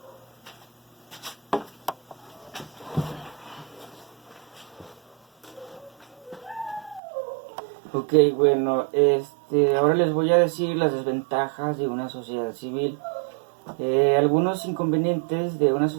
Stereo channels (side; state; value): left; drops out; at 7.0 s